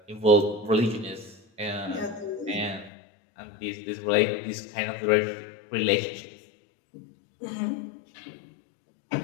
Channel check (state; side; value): drops out; right; at 2.9 s